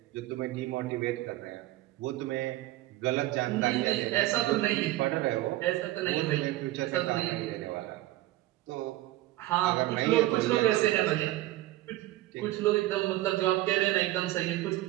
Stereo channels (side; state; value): left; quieter; 16.3 dB